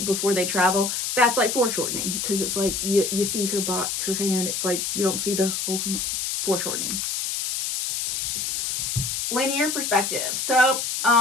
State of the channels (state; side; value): noise; left; hiss, 1 dB below the sound